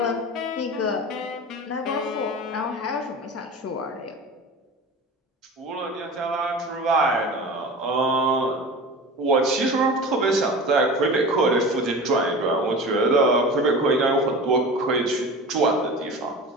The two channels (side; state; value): both; normal; correlation 0.33